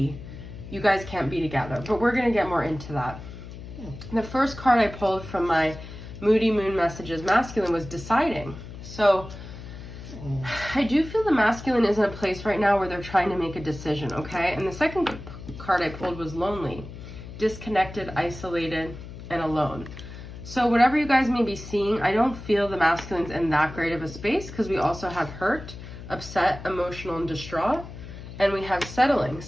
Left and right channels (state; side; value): noise; left; hum, 13 dB below the sound